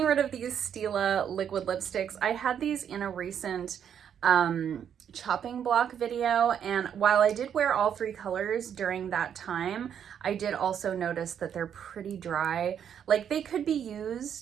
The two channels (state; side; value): quieter; left; 8.6 dB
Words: rid of these Stila liquid lipsticks. I had these in a recent chopping block video, and while I did wear all three colors during that time, I did also notice that they're pretty dry. Like, they could be